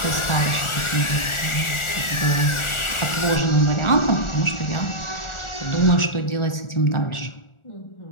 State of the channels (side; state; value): right; late; 1.4 ms